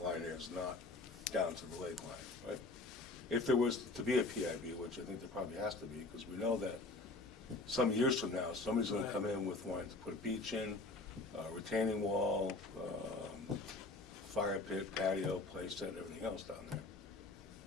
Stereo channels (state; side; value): quieter; right; 3.3 dB